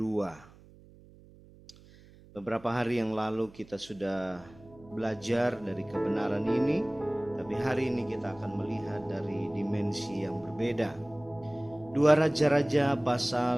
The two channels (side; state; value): right; noise; hum, 23 dB below the sound